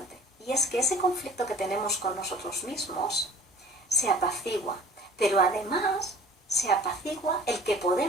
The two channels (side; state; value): both; normal; correlation 0.47